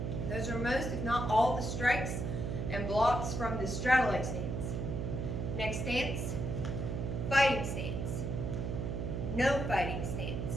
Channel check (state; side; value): noise; right; hum, 2 dB below the sound